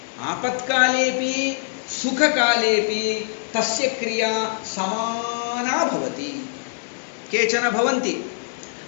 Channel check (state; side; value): silent; right; digital silence